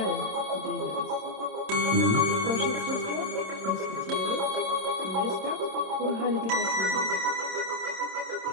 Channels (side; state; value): left; late; 27 ms